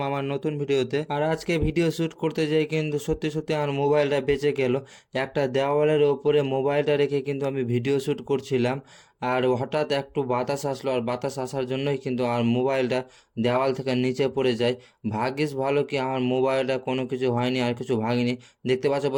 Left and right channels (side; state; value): both; identical; correlation 1.00